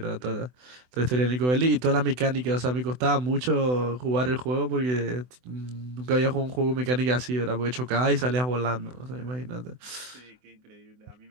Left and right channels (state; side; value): late; left; 24 ms